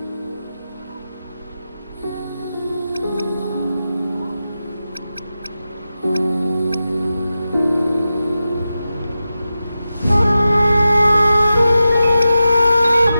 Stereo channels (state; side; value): inverted; both; correlation -0.92